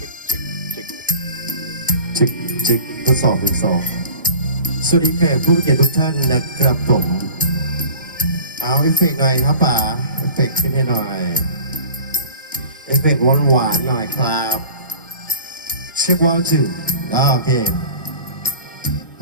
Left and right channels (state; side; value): inverted; both; correlation -0.42